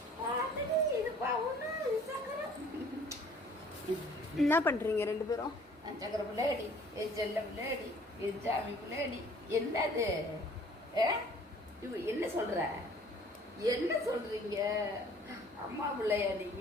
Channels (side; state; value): both; normal; correlation 0.54